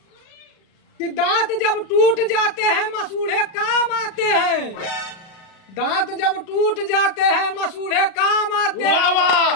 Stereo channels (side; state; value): right; late; 36 ms